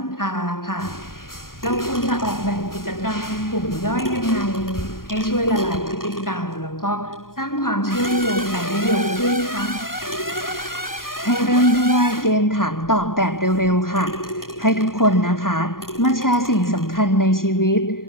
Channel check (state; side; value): late; right; 0.91 ms